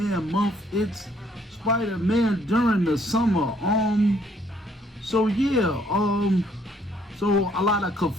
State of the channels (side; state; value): both; normal; correlation 0.66